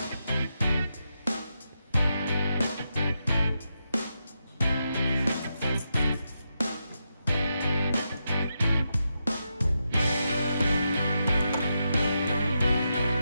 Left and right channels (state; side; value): inverted; both; correlation -0.86